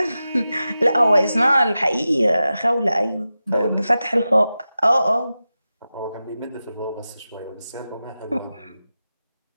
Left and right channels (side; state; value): both; inverted; correlation -0.93